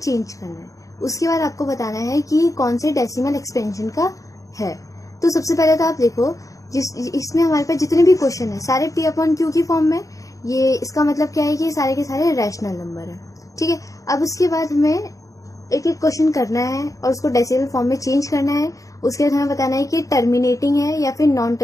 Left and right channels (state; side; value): late; right; 0.16 ms